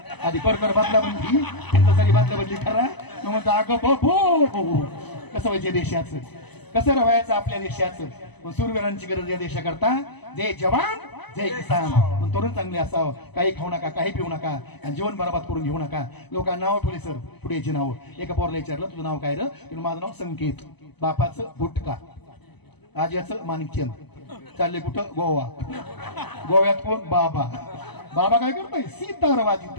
आधी परकर बदला म्हणली तरी बदला बदली करा. मग म्हणतो अगं बो कसं व्हायचं देशाचं, कसं राहायचं आपल्या देशाचं. पण सूरवीरांची गरज या देशाकरता. जय जवान जय किसान. तरुण चांगले असावं, काही खाऊ नका, काही पिऊ नका आणि जीवन बरबाद करून घेऊ नका. लोकांना नाव ठेवले सर पुढेची नाव. एका पोरला विचारलं तुझं नाव काय रे, माझं नाव संकेत, बापाचं गुटका, आज्याचं माणिकचंद. चालले कुठं, गोवा. गोव्यात कोण, बाबा. बाबा काय करतोय, सितार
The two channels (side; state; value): right; late; 0.99 ms